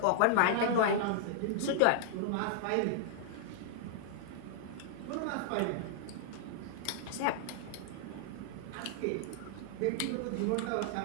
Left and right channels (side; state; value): both; different; correlation -0.01